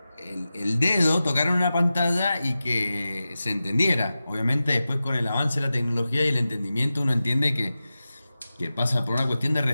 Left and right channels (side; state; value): both; inverted; correlation -0.94